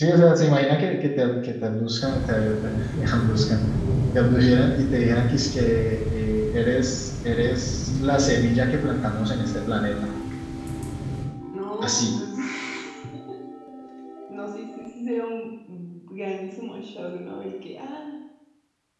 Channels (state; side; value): identical; both; correlation 1.00